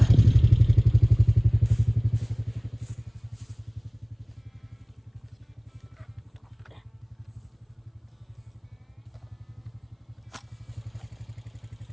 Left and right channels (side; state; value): both; identical; correlation 1.00